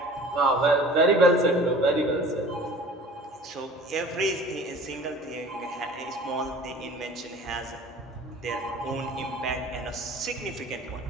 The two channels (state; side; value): normal; both; correlation 0.45